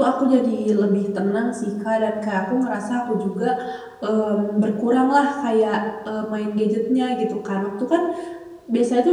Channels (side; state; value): both; identical; correlation 1.00